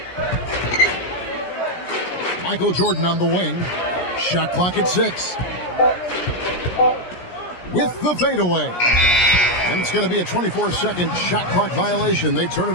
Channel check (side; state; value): right; late; 17 ms